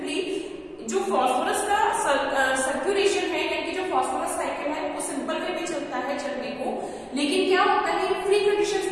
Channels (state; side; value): identical; both; correlation 1.00